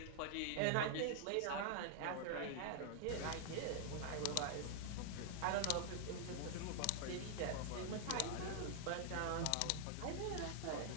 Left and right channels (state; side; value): different; both; correlation 0.00